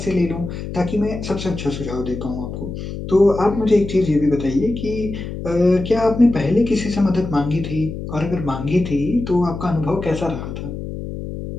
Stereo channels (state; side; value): noise; left; hum, 8 dB below the sound